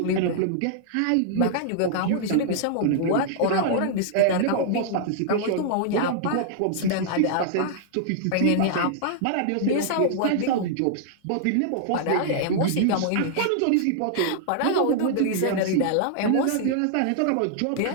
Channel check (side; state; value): both; different; correlation -0.01